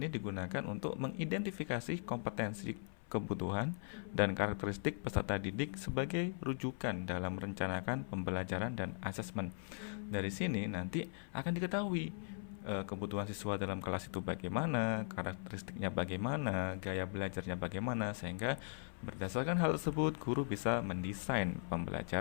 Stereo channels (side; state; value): right; silent; 51 dB below the other